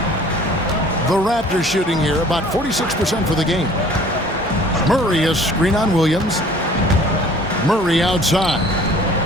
The Raptors shooting here about 46% for the game. Murray is screen on Williams. Murray outside.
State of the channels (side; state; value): both; normal; correlation 0.51